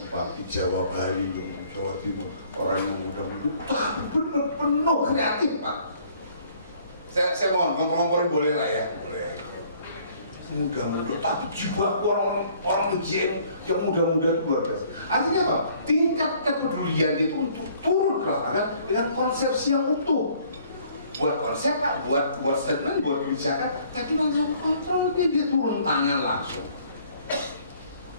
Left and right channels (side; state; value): both; inverted; correlation -0.59